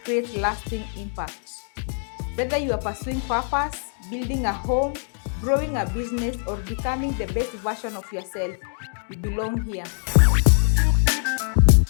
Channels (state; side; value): silent; right; 63 dB below the other